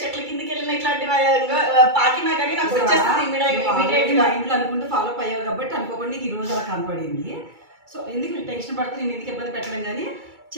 కిందకి వెళ్ళిన ఇట్లాంటివి పాకినా కానీ నాకు వచ్చేస్తుంది ఇమీడియట్ గా ఇంట్లో అనుకుంటూ ఫాలో అప్ అయ్యావు కాబట్టి అనుకోకుండా నీకు ఈ రోజు అలా కనపడింది సో ఎందుకు టెన్షన్ పడితే నేను ఎందుకు ఇబ్బంది పెట్టడం కానీ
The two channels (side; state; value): left; late; 2.3 ms